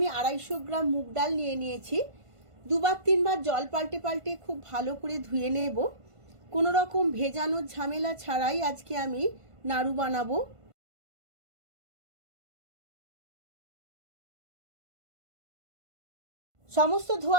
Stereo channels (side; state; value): left; late; 1.5 ms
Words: 250 গ্রাম মুগ ডাল নিয়ে নিয়েছি। দুবার তিনবার জল পাল্টে পাল্টে খুব ভালো করে ধুয়ে নেব। কোনো রকম ভেজানোর ঝামেলা ছাড়াই আজকে আমি নাড়ু বানাবো। সমস্ত